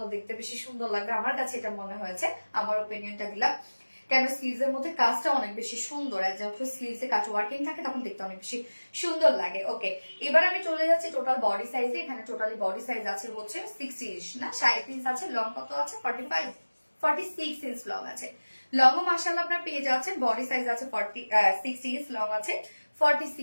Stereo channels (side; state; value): both; inverted; correlation -1.00